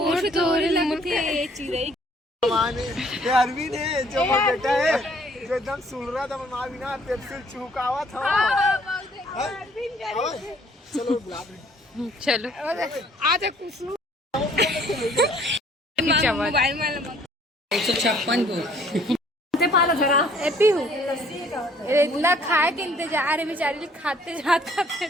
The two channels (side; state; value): both; normal; correlation 0.60